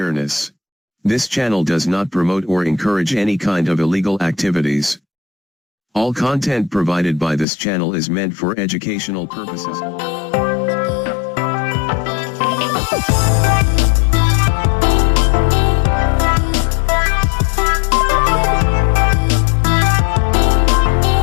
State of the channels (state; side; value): drops out; right; at 7.5 s